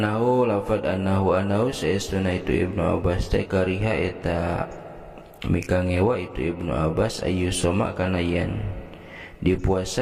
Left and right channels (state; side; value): identical; both; correlation 1.00